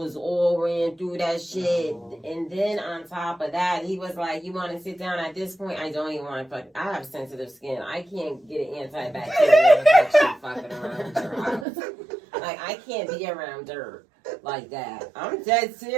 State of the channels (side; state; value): left; drops out; at 11.7 s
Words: all ran through that shit. And then on top of that, he was like, "You want to sit down?" At this point, I don't even want to fuck. I have sensitive skin. I can't get an antibacterial infection fucking around your house. Like, I can't be around dirt like that. I'm dead